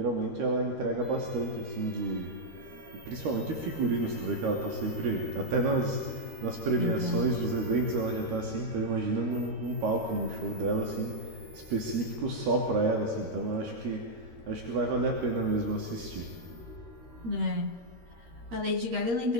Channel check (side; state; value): left; late; 13 ms